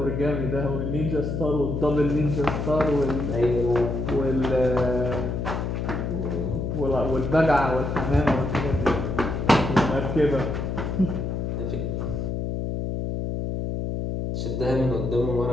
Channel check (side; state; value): left; noise; hum, 2 dB below the sound